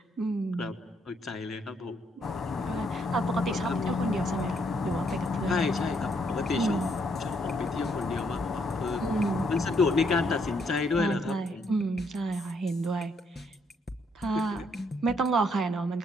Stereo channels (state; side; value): normal; both; correlation 0.72